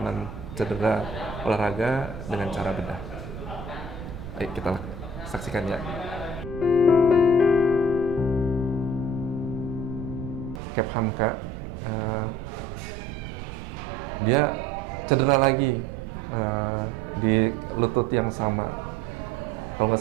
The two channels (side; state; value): right; noise; rumble, 10 dB below the sound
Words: cedera olahraga dengan cara bedah. Ayo kita saksikan ya. Cap Hamka, dia cedera lagi di lutut yang sama. Kalau nggak